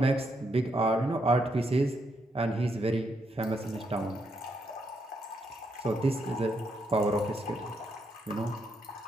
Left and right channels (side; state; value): both; normal; correlation 0.78